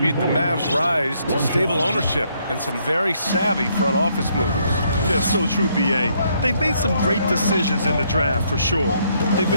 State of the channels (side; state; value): both; inverted; correlation -0.71